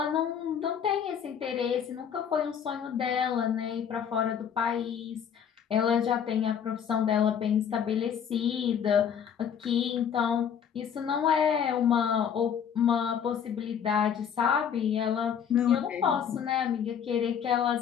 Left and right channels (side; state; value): right; quieter; 8.0 dB